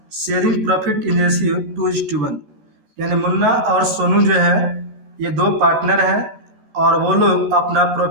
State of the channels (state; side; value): late; left; 14 ms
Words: sharing profit in ratio 2:1। यानी मुन्ना और सोनू जो है ये 2 पार्टनर हैं और वो लोग अपना